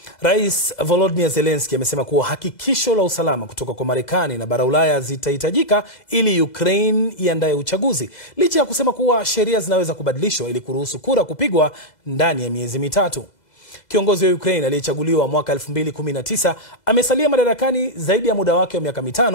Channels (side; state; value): right; late; 2.0 ms